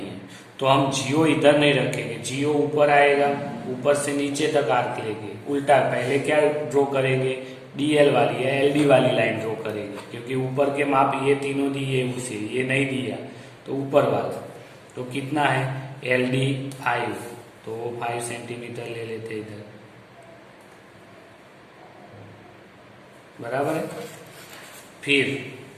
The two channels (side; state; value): both; identical; correlation 1.00